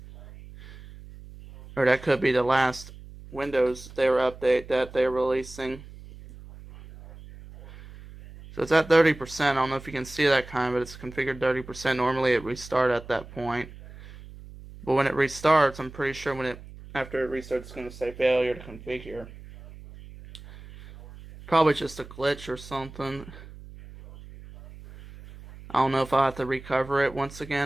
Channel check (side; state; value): right; noise; hum, 17 dB below the sound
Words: Or that could be the last Windows update that they're releasing. So it's at 30%. I don't know if you can see that but it's configured 30%. Normally it restarts at that point. But when it restarts, I'm pretty sure after it restarts, it's going to say failure to configure. Probably just a glitch or something. I don't know if I'll have to recover it once